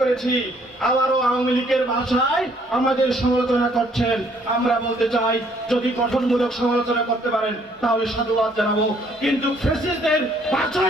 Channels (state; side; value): normal; both; correlation 0.64